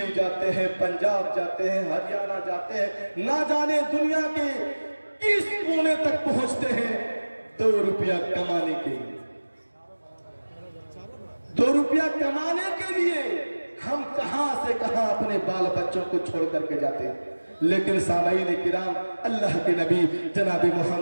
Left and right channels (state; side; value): inverted; both; correlation -1.00